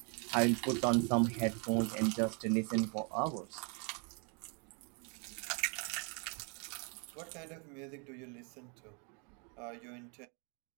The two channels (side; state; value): left; quieter; 35.8 dB